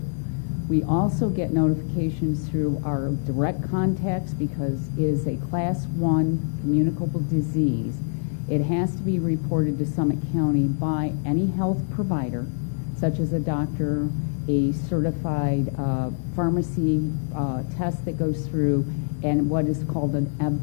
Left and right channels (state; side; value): silent; right; digital silence